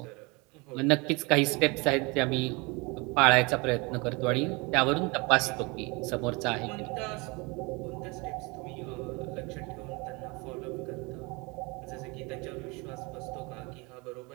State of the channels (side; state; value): left; quieter; 27.4 dB